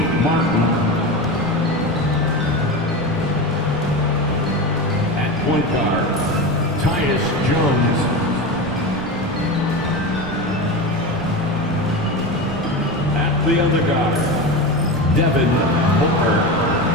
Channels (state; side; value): noise; right; rumble, 16 dB below the sound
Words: Martin. Point guard, Tyus Jones. At the other guard, Devin Booker.